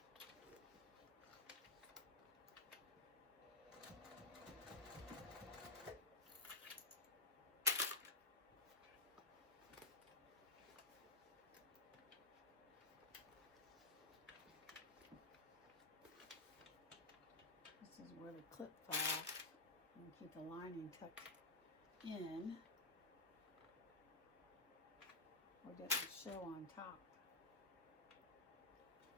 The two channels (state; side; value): quieter; right; 3.0 dB